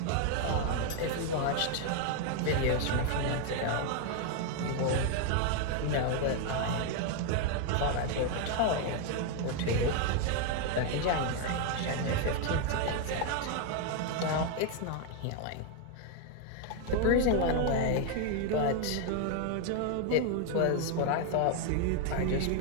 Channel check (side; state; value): both; different; correlation 0.01